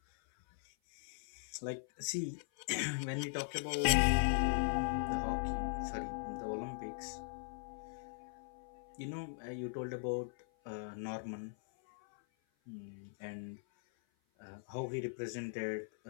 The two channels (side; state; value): right; silent; 51 dB below the other